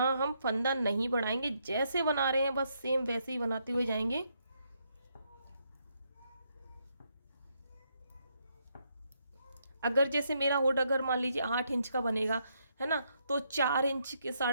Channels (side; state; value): both; inverted; correlation -0.76